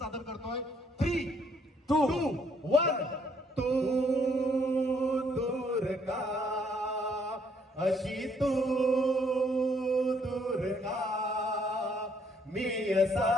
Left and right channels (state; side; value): normal; both; correlation 0.67